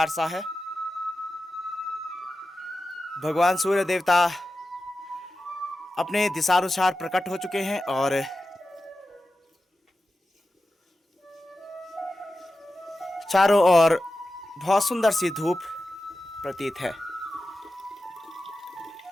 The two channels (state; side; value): normal; both; correlation 0.92